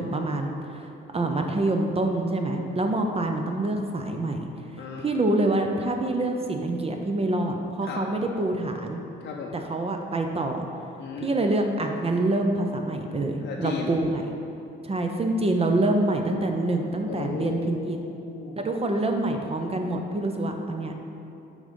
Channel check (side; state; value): both; normal; correlation 0.62